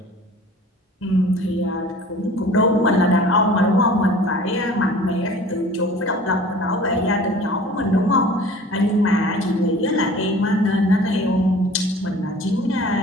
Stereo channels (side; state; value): both; normal; correlation 0.45